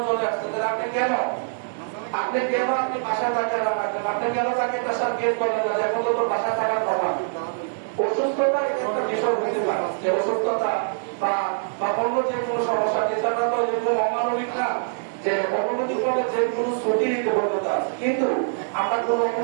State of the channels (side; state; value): left; silent; digital silence